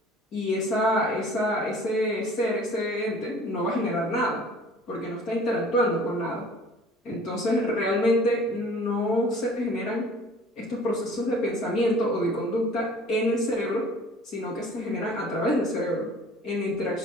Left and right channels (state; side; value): normal; both; correlation 0.49